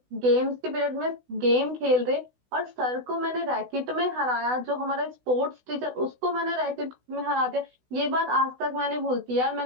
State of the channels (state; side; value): late; left; 16 ms